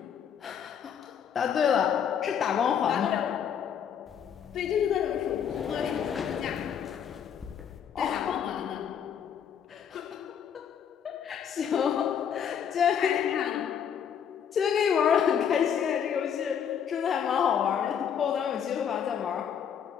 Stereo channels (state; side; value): quieter; right; 8.2 dB